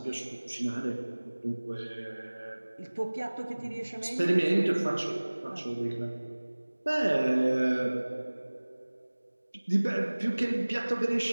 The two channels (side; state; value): both; inverted; correlation -1.00